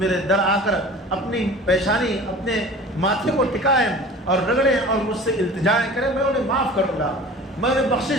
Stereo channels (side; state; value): both; normal; correlation 0.41